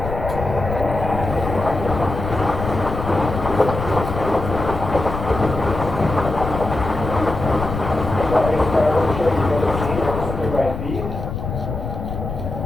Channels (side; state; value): left; noise; rumble, 6 dB below the sound